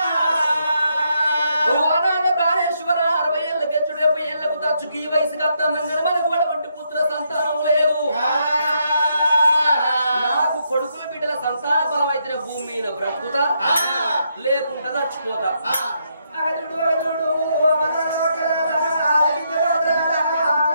ఓ నాగ ప్రాణేశ్వర 60 ఏళ్ళ గెచ్చుడు 70 ఏళ్లకు తచ్చుకి ఈ వయసు కత్తన్నగారు మనకు వంటి పుత్ర సంతానం లేదు నాకు కొడుకుల బిడ్డల సంతాన ఫలం అయితే భూమి మీద బ్రతుకుతా లేకుండా చచ్చిపోతా అగదుడు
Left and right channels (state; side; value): inverted; both; correlation -0.77